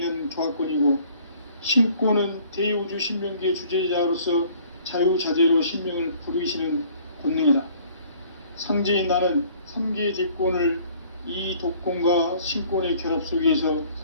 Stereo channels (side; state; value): both; inverted; correlation -0.56